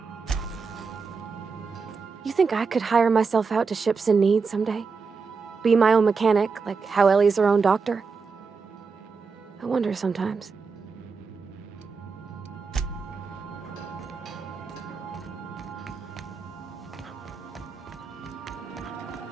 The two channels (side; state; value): left; quieter; 5.0 dB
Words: You think I could hire myself out to ships in need someday? Be my own mechanic, like how Ellie's her own doctor? I wonder sometimes.